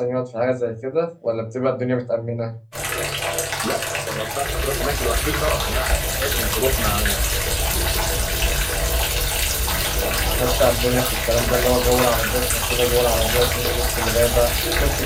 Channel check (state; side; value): identical; both; correlation 1.00